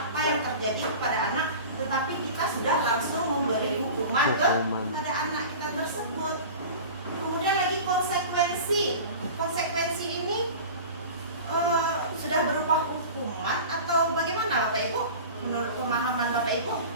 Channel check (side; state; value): both; inverted; correlation -0.36